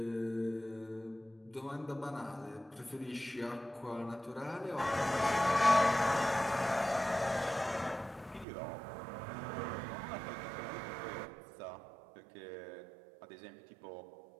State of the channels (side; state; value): left; drops out; at 8.5 s